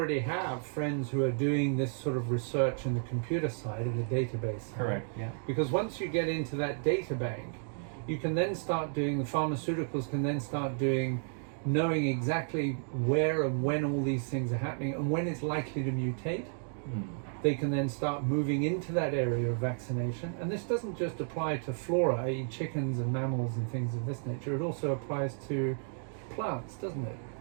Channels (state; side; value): silent; left; 56 dB below the other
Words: have friends who are doing this sort of research in the computer side of the database side. Correct, yeah. Because once you get into that data bank, you can then start doing, the pharmaceuticals can then start doing, knowing exactly where and when all these things are happening and when it's likely to mutate. They can then start moving into that area of vaccination. And this doesn't just apply to flora, i.e. chickens and mammals and things of this nature. It also applies to plants, doesn't it?